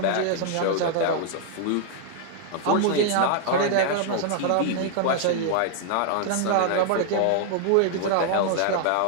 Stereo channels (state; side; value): different; both; correlation 0.00